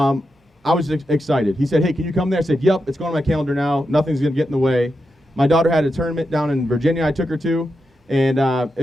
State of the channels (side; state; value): both; normal; correlation 0.87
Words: I was excited. He said, hey, can you come there? I said, yep, it's going on my calendar now. Nothing's going to get in the way. My daughter had a tournament down in Virginia I took her to, and